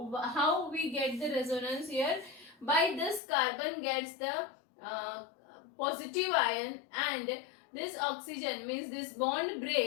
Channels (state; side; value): drops out; right; at 3.2 s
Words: How we get the resonance here? By this carbon gets the uh, positive ion, and this oxygen means this bond